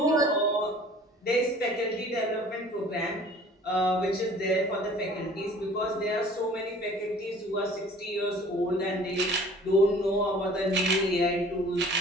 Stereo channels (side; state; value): both; normal; correlation 0.49